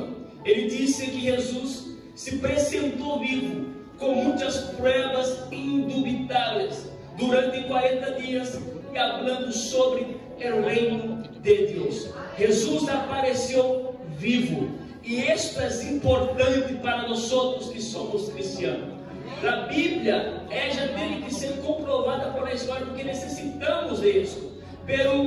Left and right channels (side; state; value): both; identical; correlation 1.00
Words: Ele disse que Jesus se apresentou vivo, com muitas provas indubitáveis, durante 40 dias, e falando sobre o reino de Deus. Jesus apareceu vivo, e isto é importante para nós outros que somos cristianos. A Bíblia, ela tem que ser comprovada por a história, porque necessitamos disso.